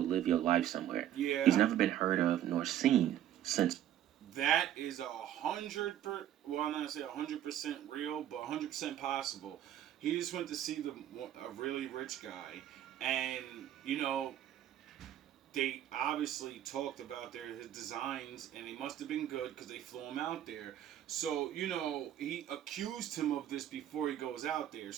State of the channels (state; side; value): quieter; left; 11.4 dB